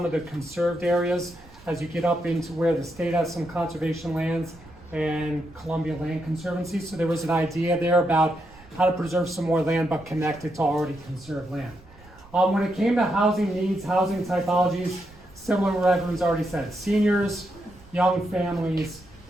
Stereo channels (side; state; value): right; noise; rumble, 24 dB below the sound